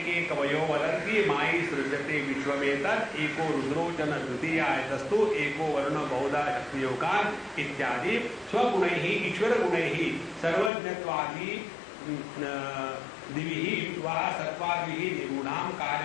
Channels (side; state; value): right; drops out; at 10.7 s